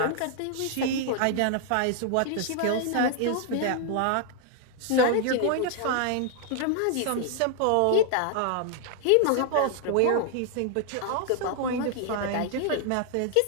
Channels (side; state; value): both; different; correlation 0.00